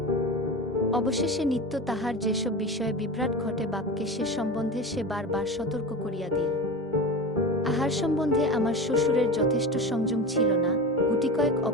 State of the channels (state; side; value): normal; both; correlation 0.27